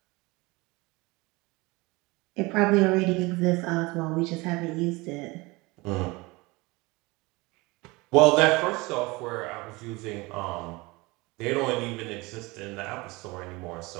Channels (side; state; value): left; quieter; 23.7 dB